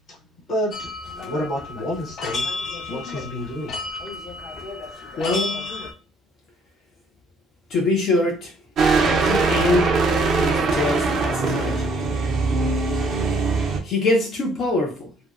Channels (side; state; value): both; normal; correlation 0.62